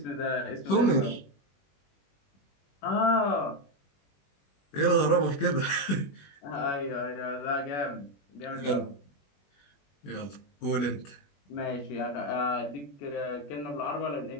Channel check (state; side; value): late; right; 21 ms